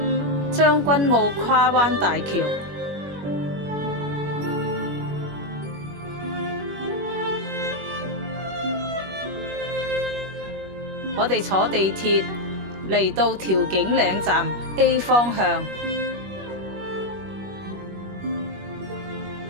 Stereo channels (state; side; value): late; left; 21 ms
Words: 將軍澳跨灣大橋。我哋坐地鐵嚟到調景嶺站 A 方向